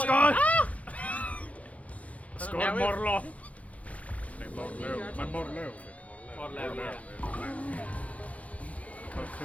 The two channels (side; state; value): right; late; 0.067 ms